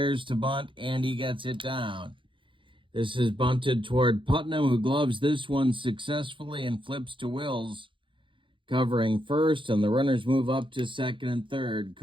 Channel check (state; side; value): late; left; 0.24 ms